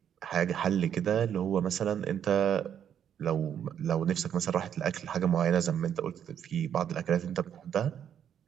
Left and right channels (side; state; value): left; quieter; 9.0 dB